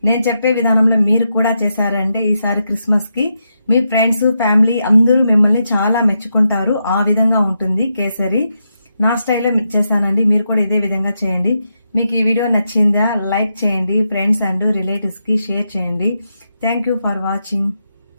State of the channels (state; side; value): inverted; both; correlation -0.84